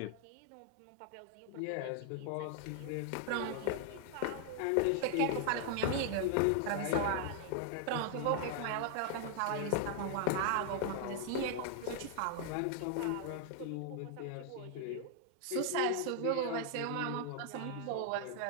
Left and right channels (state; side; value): different; both; correlation 0.00